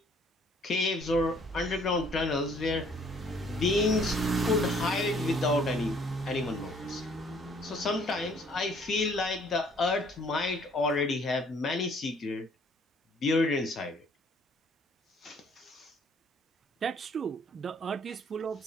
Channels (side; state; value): both; normal; correlation 0.60